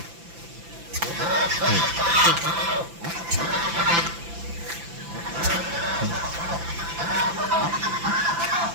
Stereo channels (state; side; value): late; left; 5.9 ms